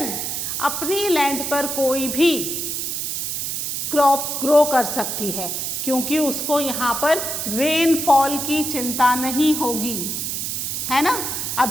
अपनी लैंड पर कोई भी क्रॉप ग्रो कर सकती है, क्योंकि उसको यहाँ पर रेनफॉल की चिंता नहीं होगी, है ना।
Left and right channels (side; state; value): right; noise; hiss, 2 dB below the sound